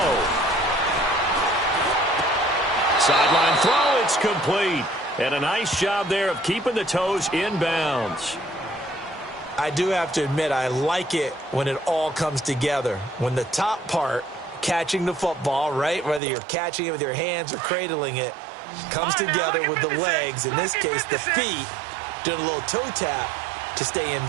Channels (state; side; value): drops out; left; at 16.2 s